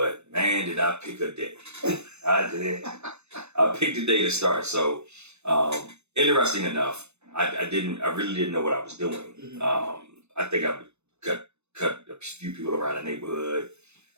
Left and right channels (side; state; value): left; late; 0.81 ms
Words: man, did I pick a day. I did. I picked a day to start. So interesting enough, I really didn't know what I was doing. Mm-hmm. I think I cut a few people around the neighborhood